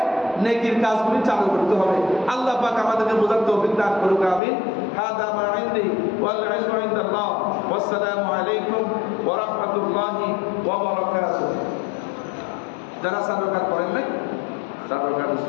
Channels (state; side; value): drops out; right; at 4.4 s